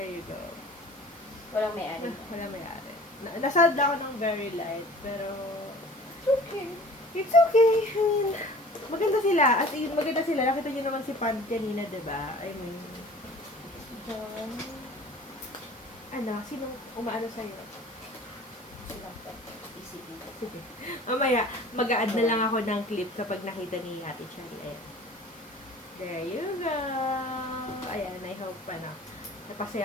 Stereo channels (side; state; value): both; normal; correlation 0.46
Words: you go. Walang may-ari. Wala may-ari. Nasad ako ng very light, pero it's okay. It's okay. I mean, maganda sila. As in, maganda sila. Nakita nyo naman si Pand kanina, diba? I mean, Don. ano, sinong umaano sa'yo? Silang isipin. Sige. Mamaya, mag-a-add na lang ako ng clip kapag nakita ni Ate Charlie. Ayan. There you go. Ayan, I hope pa na napasaya